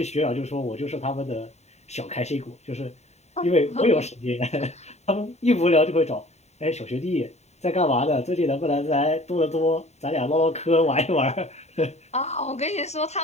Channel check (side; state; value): right; late; 0.32 ms